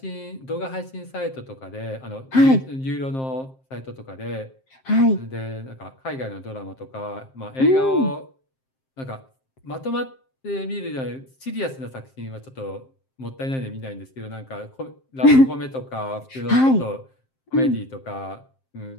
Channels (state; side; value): late; right; 7.6 ms